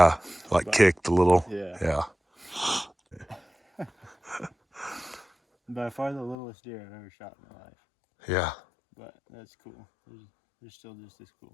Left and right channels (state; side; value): drops out; right; at 6.4 s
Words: Like But- kicked a little. Yeah. Yeah. by far the littlest deer I've ever shot in my life. Yeah. But that's cool. They're still just as